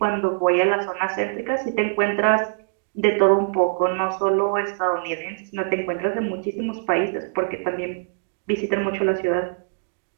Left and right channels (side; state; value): left; silent; digital silence